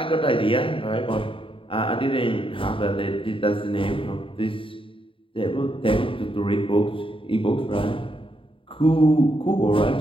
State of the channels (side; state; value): right; late; 0.25 ms